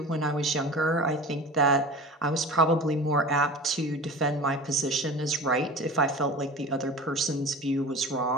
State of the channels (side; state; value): both; normal; correlation 0.35